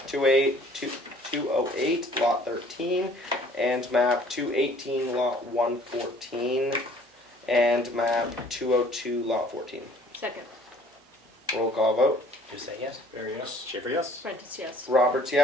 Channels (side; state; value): both; normal; correlation 0.55